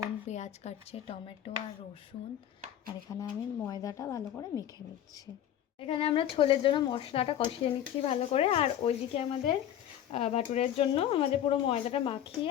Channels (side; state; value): right; quieter; 10.8 dB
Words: পেঁয়াজ কাটছে, টমেটো আর রসুন, আর এখানে আমি ময়দাটা ভালো করে মেখে নিচ্ছি। এখানে আমরা ছোলের জন্য মশলাটা কষিয়ে নিচ্ছি ভালো করে, আর ওইদিকে আমাদের ভাটুরের জন্য আমাদের পুরো ময়দাটা মাখিয়ে